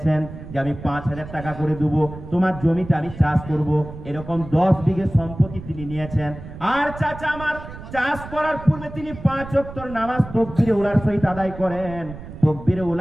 যে আমি 5,000 টাকা করে দেবো, তোমার জমিতে আমি চাষ করব। এরকম 10 বিঘে সম্পত্তি তিনি নিয়েছেন। আর চাচা আমার চাষ করার পূর্বে তিনি 5 ওয়াক্ত নামাজ তাকবীরে উলার সহিত আদায় করেন। তাকবীরে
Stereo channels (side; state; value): right; noise; rumble, 13 dB below the sound